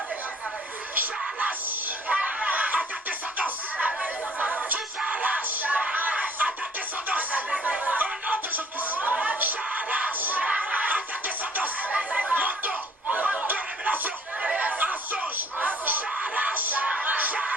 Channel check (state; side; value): normal; both; correlation 0.59